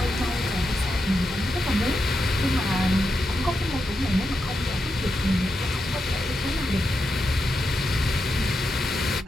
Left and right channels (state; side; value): normal; both; correlation 0.86